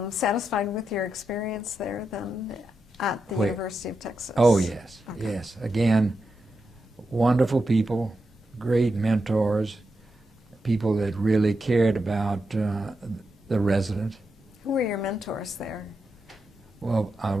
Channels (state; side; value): normal; both; correlation 0.87